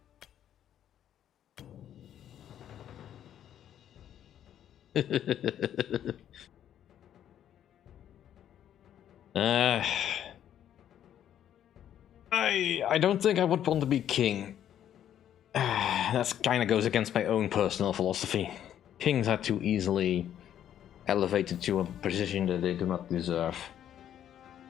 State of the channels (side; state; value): right; quieter; 10.4 dB